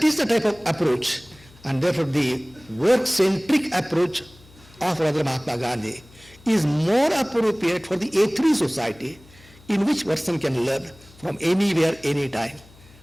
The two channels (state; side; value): noise; left; hum, 25 dB below the sound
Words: is the type of approach, and therefore the work-centric approach of Radha Mahatma Gandhi is more appropriate for the A3 society, in which person can learn from anywhere, anytime,